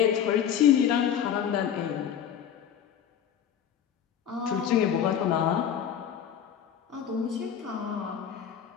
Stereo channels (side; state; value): right; quieter; 8.9 dB